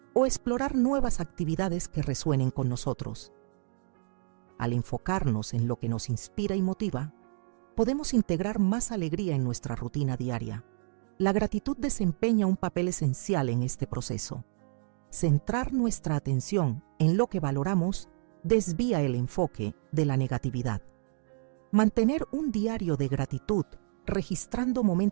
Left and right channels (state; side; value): silent; left; digital silence